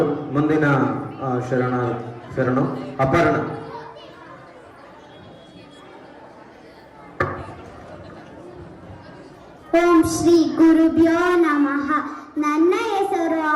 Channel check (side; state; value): both; identical; correlation 1.00